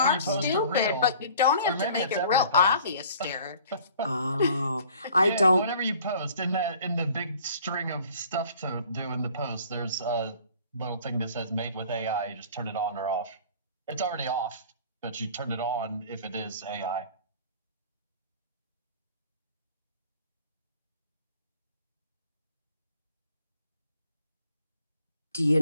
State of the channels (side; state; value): both; inverted; correlation -0.51